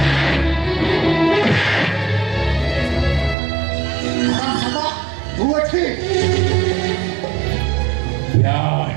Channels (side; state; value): left; drops out; at 3.4 s